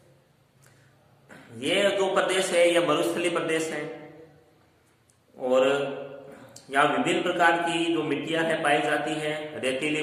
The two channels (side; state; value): both; identical; correlation 1.00